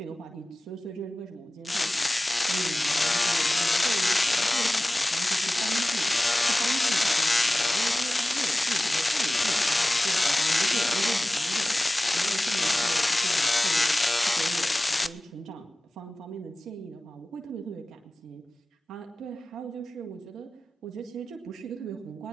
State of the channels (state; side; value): normal; both; correlation 0.97